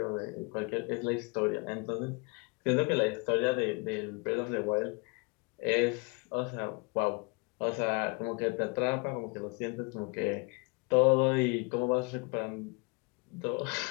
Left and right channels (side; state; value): right; quieter; 30.7 dB